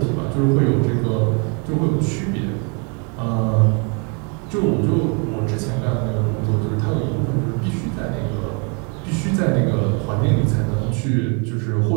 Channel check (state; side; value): quieter; left; 35.9 dB